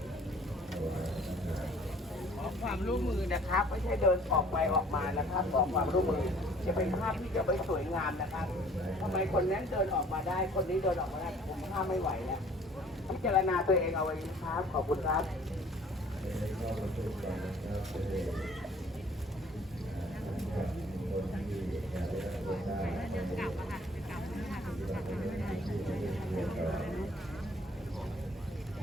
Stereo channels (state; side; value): normal; both; correlation 0.54